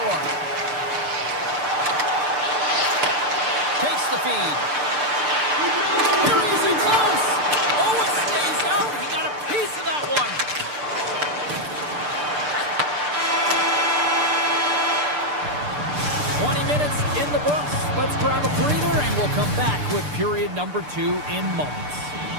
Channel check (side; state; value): left; late; 6.8 ms